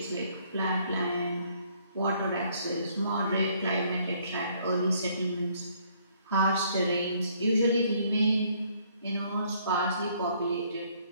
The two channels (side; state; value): both; inverted; correlation -0.65